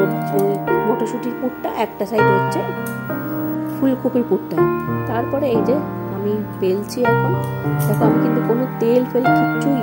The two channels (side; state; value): both; identical; correlation 1.00